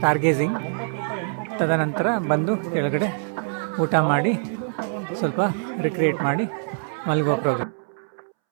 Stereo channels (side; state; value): left; silent; 63 dB below the other